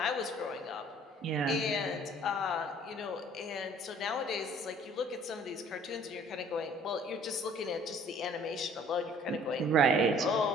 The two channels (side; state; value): both; normal; correlation 0.54